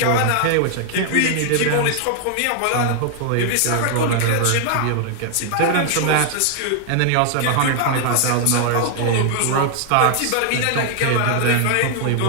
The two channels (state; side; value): different; both; correlation 0.00